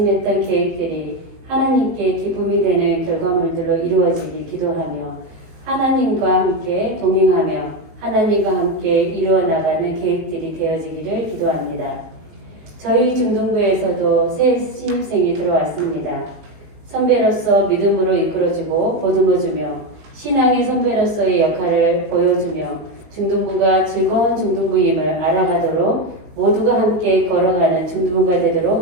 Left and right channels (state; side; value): late; left; 19 ms